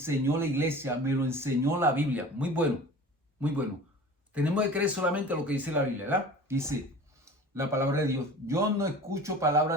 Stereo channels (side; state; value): both; normal; correlation 0.40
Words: la iglesia, me lo enseñó la Biblia. Muy bueno, muy bueno. Tenemos que creer solamente lo que dice la Biblia, ¿verdad? Dice la palabra de Dios. Yo no escucho